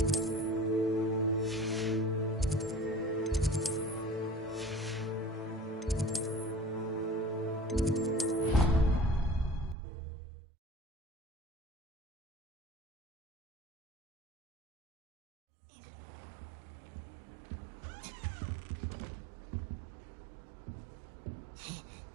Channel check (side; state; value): left; drops out; at 9.8 s